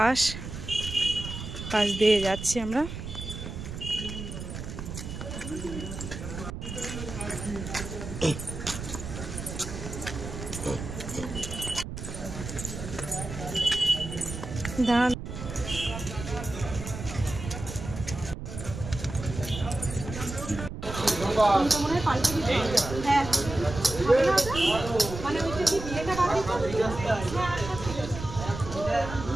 দিয়ে যাচ্ছি আমরা। ধান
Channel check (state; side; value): noise; right; rumble, 8 dB below the sound